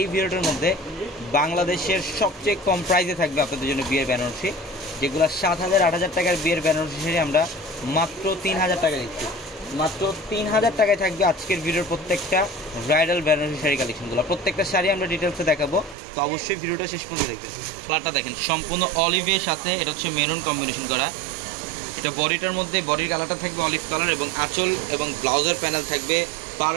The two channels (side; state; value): left; drops out; at 16.0 s